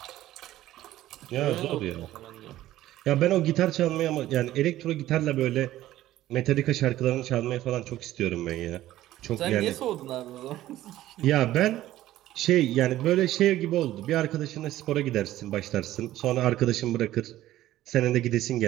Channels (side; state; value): left; quieter; 14.4 dB